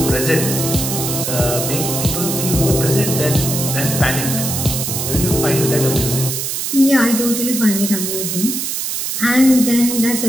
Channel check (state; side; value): noise; right; hiss, 2 dB below the sound